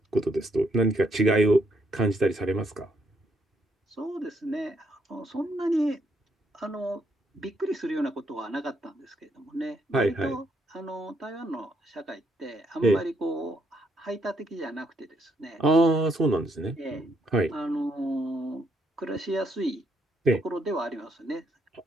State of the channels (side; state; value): both; normal; correlation 0.74